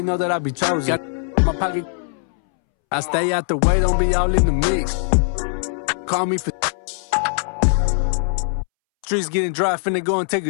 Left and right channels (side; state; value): right; silent; 65 dB below the other